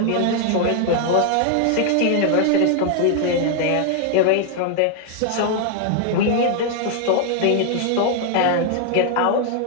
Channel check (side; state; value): both; different; correlation 0.00